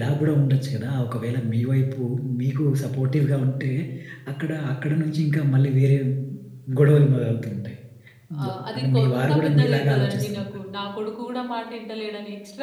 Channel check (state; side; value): identical; both; correlation 1.00